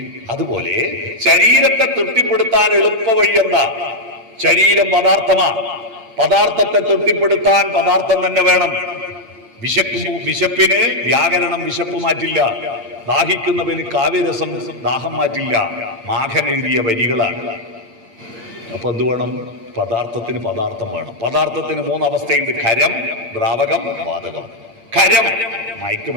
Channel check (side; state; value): left; late; 8.9 ms